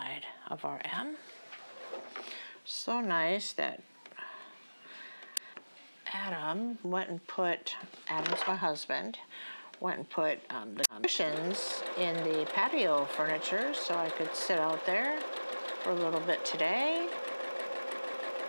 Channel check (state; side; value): inverted; both; correlation -1.00